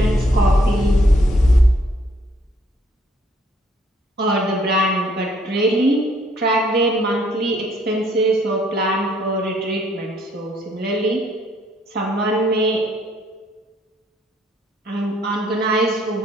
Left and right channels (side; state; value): both; normal; correlation 0.66